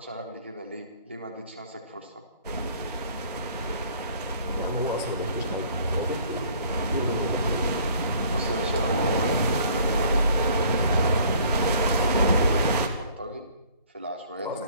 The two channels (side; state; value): both; inverted; correlation -0.56